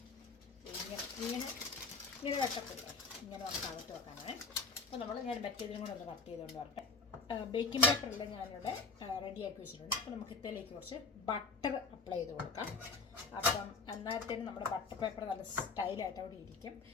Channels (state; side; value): quieter; right; 4.3 dB